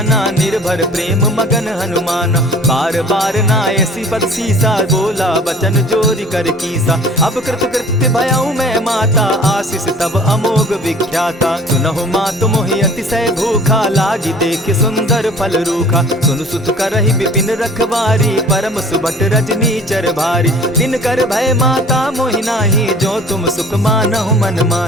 निर्भर प्रेम मगन हनुमाना। बार बार नायसी पद सीसा बोला बचन जोरी कर कीसा। अब कृत कृत्य भयऊ मैं माता आशीष तब अमोघ विख्याता। सुनहु मातु मोहि अतिशय भूखा लागी देख सुंदर फल रूखा। सुन सुत करहि विपिन रखवारी परम सुबट रजनी चर भारी। दिन कर भय माता मोहि नाही जो तुम सुख मानहु मन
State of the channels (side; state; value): both; normal; correlation 0.48